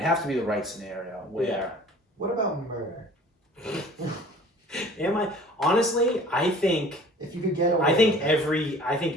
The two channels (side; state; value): both; normal; correlation 0.48